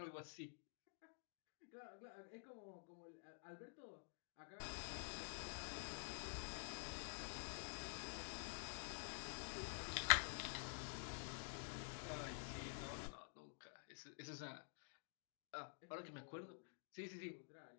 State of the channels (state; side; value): silent; right; digital silence